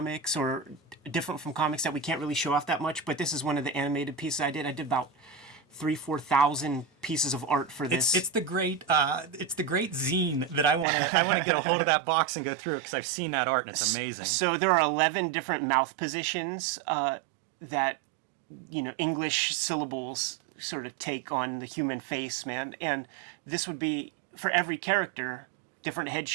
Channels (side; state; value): left; drops out; at 10.9 s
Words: or different from comics that we can't really show off that much. But this is one of the animated pieces I did. I did about 3,000-4,000 pieces of art for this. It's the great zine that I want to get a hold of that box and go through, because I've seen that art and it's amazing. So there are 11 different mouth positions that English syllables sort of take on the human face, man. And this would be for every character, different head